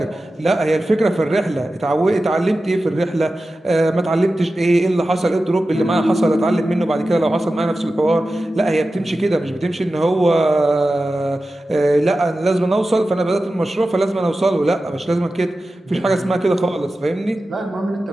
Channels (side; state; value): both; normal; correlation 0.94